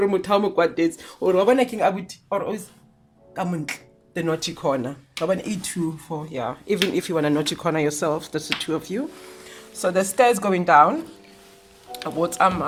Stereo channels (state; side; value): identical; both; correlation 1.00